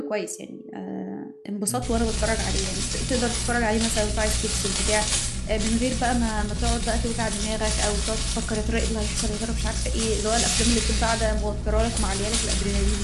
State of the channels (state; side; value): identical; both; correlation 1.00